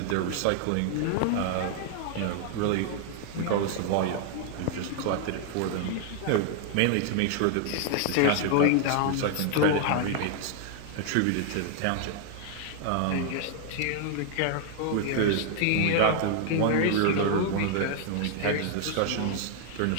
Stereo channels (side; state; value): both; different; correlation 0.00